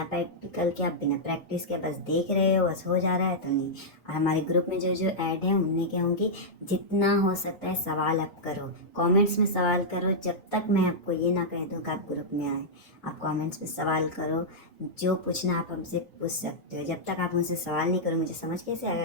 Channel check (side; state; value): both; normal; correlation -0.08